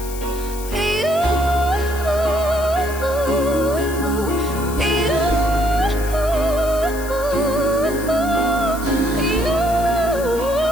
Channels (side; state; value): left; noise; hiss, 13 dB below the sound